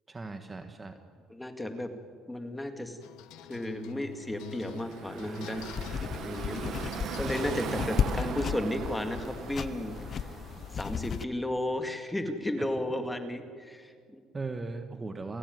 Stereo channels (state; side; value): normal; both; correlation 0.81